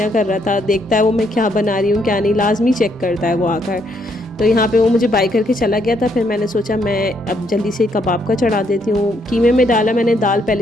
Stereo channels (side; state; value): both; normal; correlation 0.73